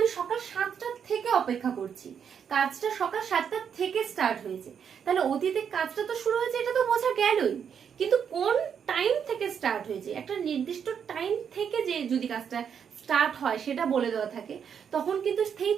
সকাল 7টা থেকে অপেক্ষা করছি, কাজটা সকাল 7টা থেকে স্টার্ট হয়েছে, তাহলে অতীতে কাজটা তো শুরু হয়েছে এটা তো বোঝা গেলই, কিন্তু কোন টাইম থেকে স্টার্ট হয়েছে, একটা নির্দিষ্ট টাইম থেকে যে যদি কাজটা স্টার্ট হয় সেটা বলে দেওয়া থাকে, তখন কিন্তু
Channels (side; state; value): left; quieter; 7.6 dB